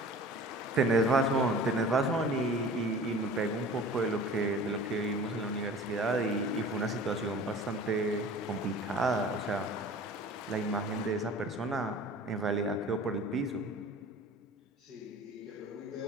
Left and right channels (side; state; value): both; normal; correlation 0.43